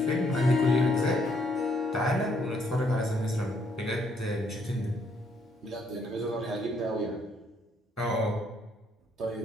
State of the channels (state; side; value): normal; both; correlation 0.70